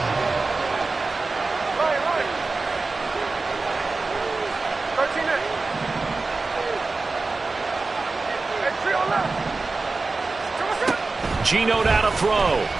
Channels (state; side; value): quieter; left; 3.7 dB